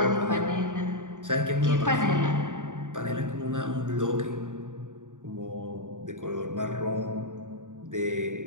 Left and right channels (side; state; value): left; late; 0.87 ms